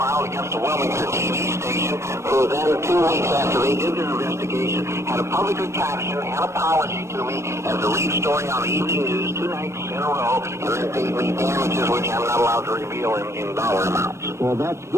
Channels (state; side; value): late; left; 0.13 ms